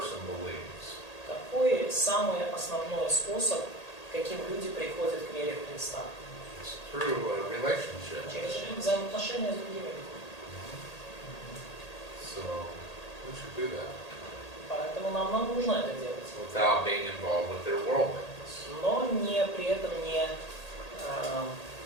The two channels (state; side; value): late; right; 1.8 ms